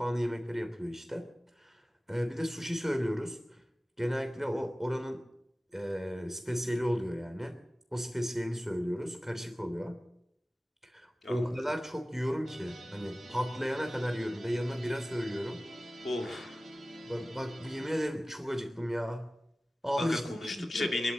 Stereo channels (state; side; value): normal; both; correlation 0.97